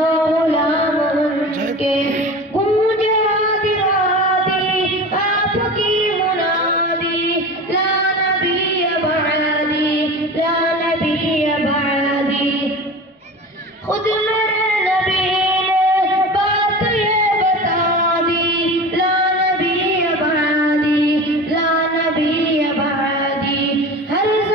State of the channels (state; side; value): normal; both; correlation 0.33